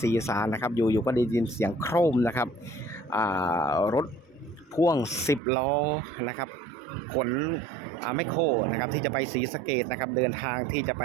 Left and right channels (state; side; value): drops out; left; at 5.4 s